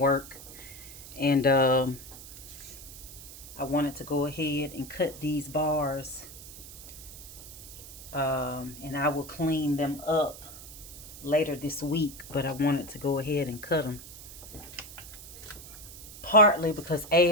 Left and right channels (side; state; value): right; noise; hiss, 15 dB below the sound